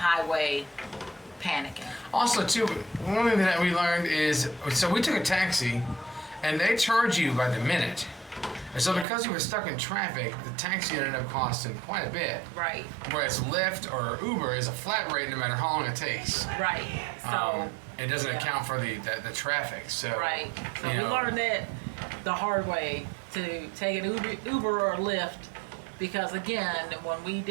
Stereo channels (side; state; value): left; drops out; at 9.1 s